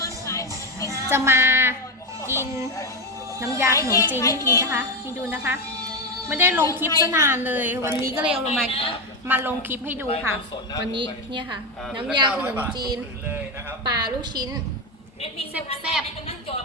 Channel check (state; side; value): normal; both; correlation 0.13